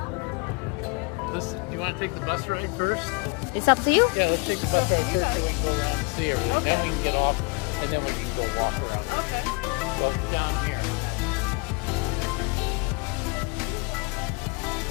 you want to take the bus ride first? It's up to you. Yeah, let's take the bus ride first so we can go around and see everything. Then we can get off and then we can go walk around. Okay. Well, down here.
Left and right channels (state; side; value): quieter; right; 30.8 dB